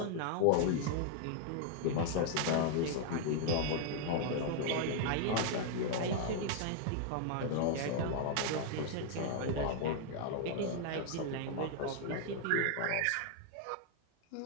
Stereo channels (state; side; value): different; both; correlation 0.00